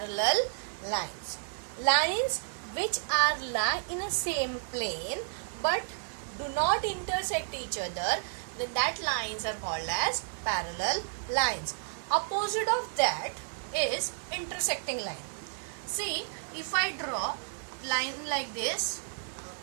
lines. Lines which are lie in a same plane but do not intersect each other, then that lines are called as parallel lines. Opposite of that is intersecting line. See, if I draw line like this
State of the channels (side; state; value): left; silent; digital silence